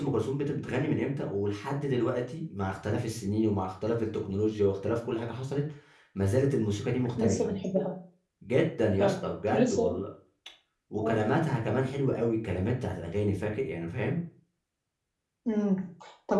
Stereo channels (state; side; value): identical; both; correlation 1.00